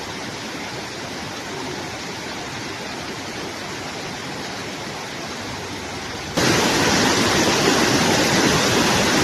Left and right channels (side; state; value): both; identical; correlation 1.00